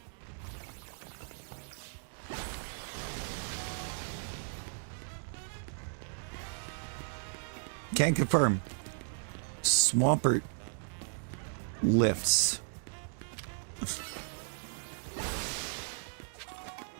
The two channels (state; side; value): silent; left; 54 dB below the other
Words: Can confirm. Swampert lifts.